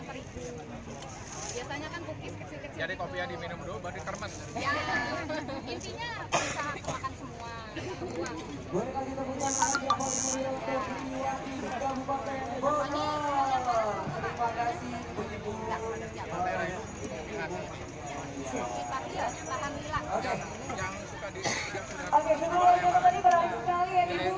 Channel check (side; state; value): both; identical; correlation 1.00